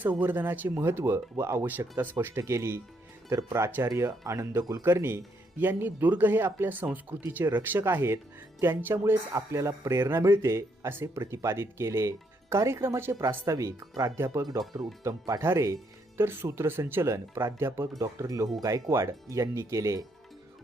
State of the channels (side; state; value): both; normal; correlation 0.74